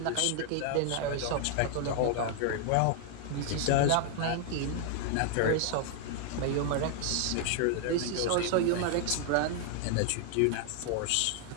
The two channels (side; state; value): both; different; correlation 0.00